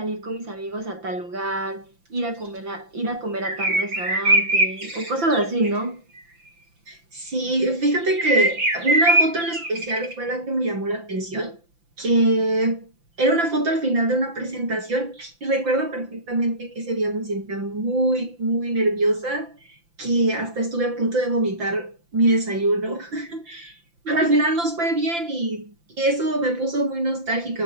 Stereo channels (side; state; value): left; late; 5.8 ms